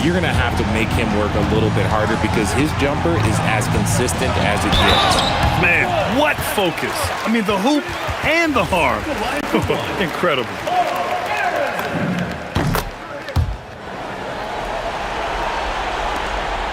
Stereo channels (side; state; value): both; identical; correlation 1.00